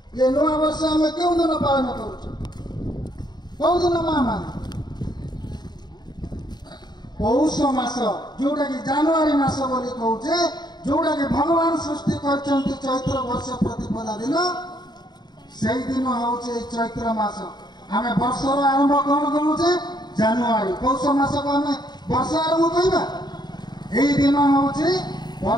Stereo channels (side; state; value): right; late; 0.20 ms